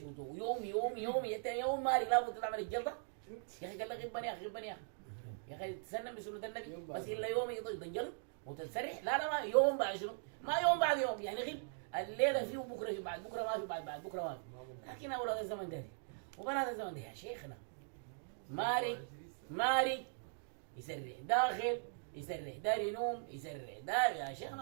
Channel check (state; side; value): silent; left; digital silence